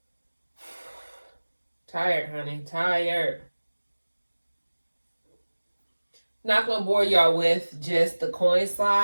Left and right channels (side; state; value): both; inverted; correlation -1.00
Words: Tired, honey. Tired. Not gonna bore y'all with just the coin